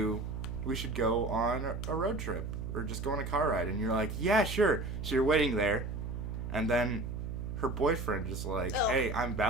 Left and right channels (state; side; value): noise; right; hum, 5 dB below the sound